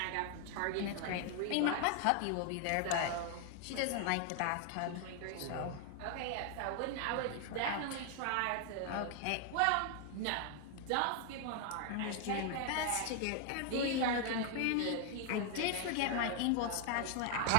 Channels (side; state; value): both; different; correlation 0.00